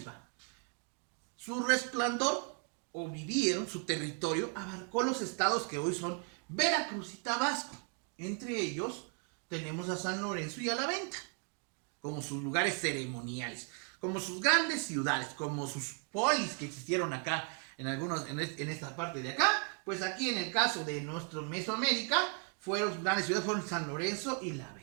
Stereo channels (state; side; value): quieter; left; 36.1 dB